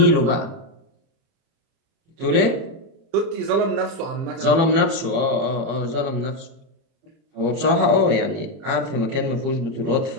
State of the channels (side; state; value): left; late; 30 ms